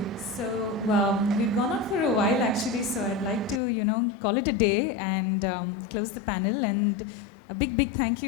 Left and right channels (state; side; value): drops out; right; at 3.6 s